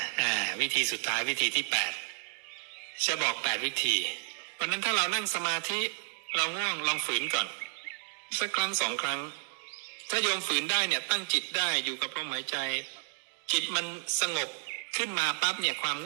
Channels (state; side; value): silent; left; 57 dB below the other